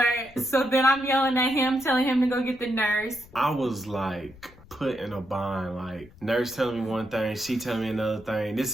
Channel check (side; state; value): left; noise; rumble, 23 dB below the sound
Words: So then I'm yelling at him, telling him to go get the nurse. I was like put in a bind, like nurse telling me one thing, she telling me another thing. This